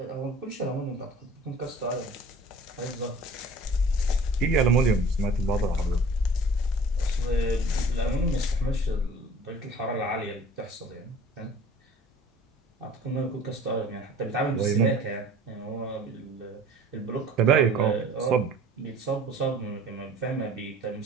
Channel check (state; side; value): normal; both; correlation 0.46